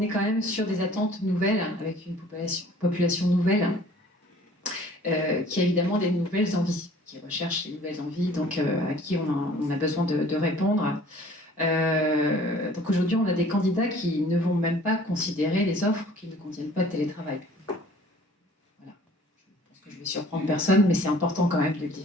quand même sur des attentes nouvelles, avec une population nouvelle, qui a évidemment des nouvelles envies, qui recherche les nouvelles envies, donc à qui on a besoin de répondre. Donc aujourd'hui, on a des candidats qui ne vont même pas considérer les offres qui ne contiennent pas de télétravail. Je vais surprendre personne, mais c'est important quand même de le dire.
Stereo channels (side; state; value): both; normal; correlation 0.52